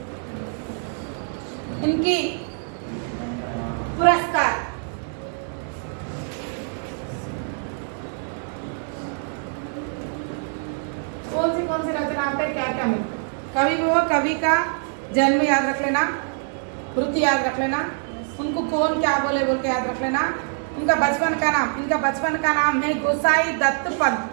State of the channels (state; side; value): silent; left; 56 dB below the other